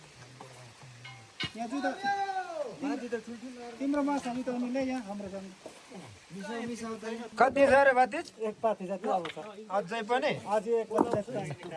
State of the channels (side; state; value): both; identical; correlation 1.00